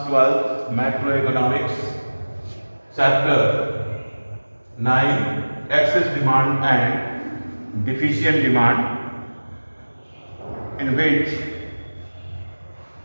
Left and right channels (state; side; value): inverted; both; correlation -1.00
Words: 12 macroeconomics chapter 9 excess demand and deficient demand, in which